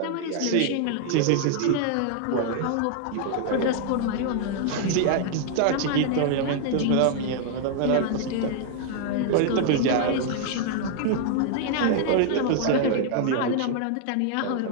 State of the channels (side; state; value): both; different; correlation -0.01